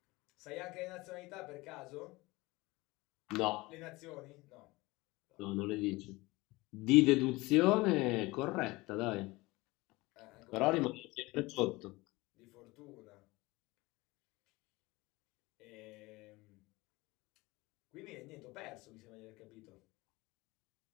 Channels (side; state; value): right; quieter; 21.8 dB